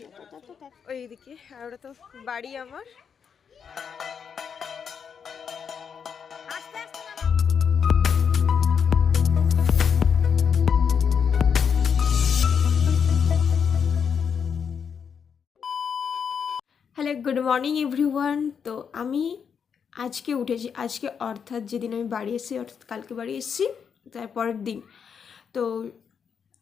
ওইদিকে আর ওটা তো বাড়ি আমার। Hello, good morning everyone. তো আমি আজকে উঠেছি, আজকে অর্থাৎ যেদিন আমি বাড়ি এসেছি, অর্থাৎ কালকে বাড়ি এসেছি তারপরের দিন। তো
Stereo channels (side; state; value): right; quieter; 6.9 dB